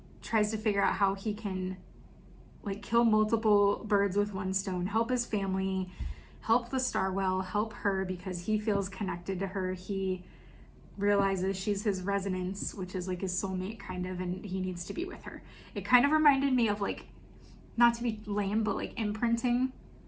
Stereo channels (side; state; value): both; identical; correlation 1.00